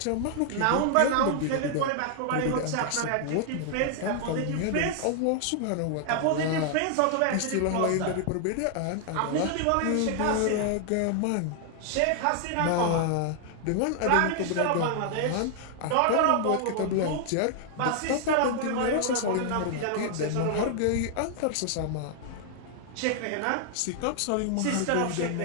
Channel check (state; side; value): different; both; correlation 0.00